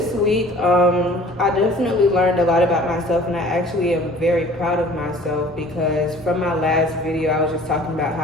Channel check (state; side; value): normal; both; correlation 0.49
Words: week, I definitely learned a lot about myself, and I actually am very proud of myself because from my last video, I was just talking about how